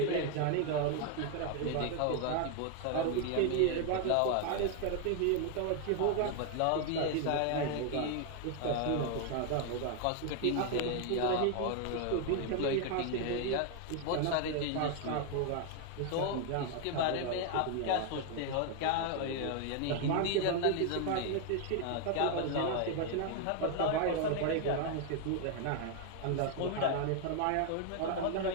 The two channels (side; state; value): both; different; correlation 0.00